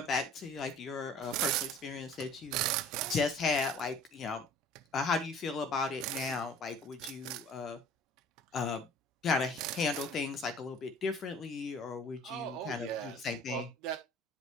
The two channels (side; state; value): both; normal; correlation 0.49